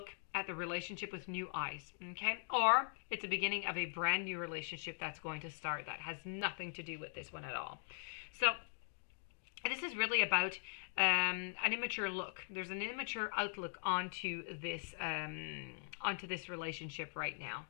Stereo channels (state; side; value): silent; right; digital silence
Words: at the relationship with new eyes, okay? Or it's the beginning of a brand new relationship that's going to start that has nothing to do with this one at all. So this is really about an immature look. There's an immature outlook onto this relationship right now.